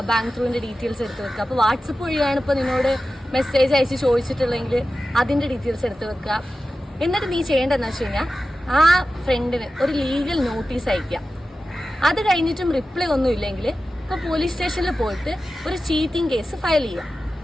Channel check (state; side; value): normal; both; correlation 0.94